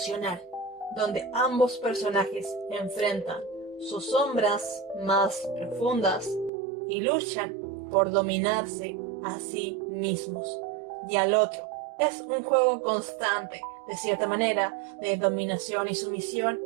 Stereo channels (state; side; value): drops out; left; at 6.5 s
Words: donde ambos personajes enfrentan sus sombras más profundas y luchan por dominarse a sí mismos y al otro. Es un juego constante, de cierta manera, de dominación y sumisión